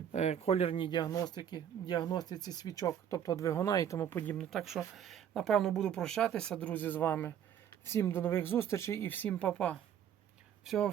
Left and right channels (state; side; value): quieter; left; 9.2 dB